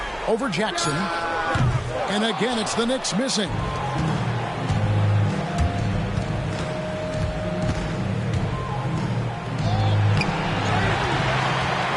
Over Jackson. And again, it's the Knicks missing.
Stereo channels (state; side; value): identical; both; correlation 1.00